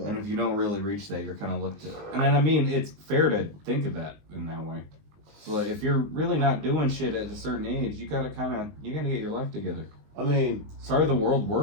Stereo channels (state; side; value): late; left; 20 ms